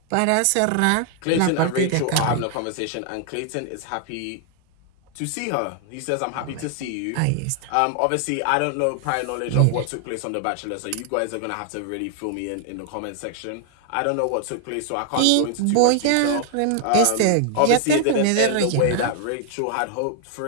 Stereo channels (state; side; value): different; both; correlation 0.00